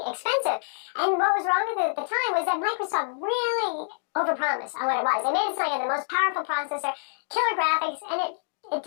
expensive. And what was wrong with it at the time was that Microsoft really overpromised on what it was. They made it sound like the most powerful processor, killer graphics, and it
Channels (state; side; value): silent; right; digital silence